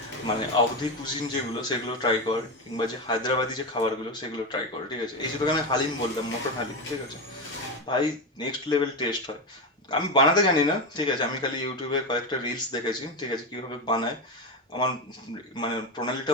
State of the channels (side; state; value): both; normal; correlation 0.15